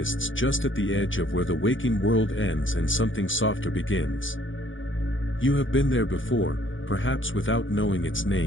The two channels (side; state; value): right; late; 0.57 ms